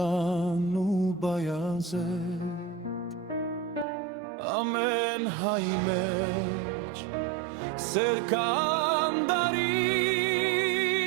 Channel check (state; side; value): drops out; left; at 3.9 s